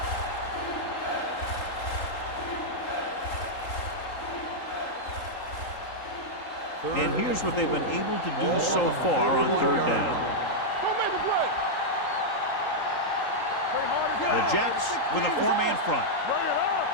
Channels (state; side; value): late; right; 3.8 ms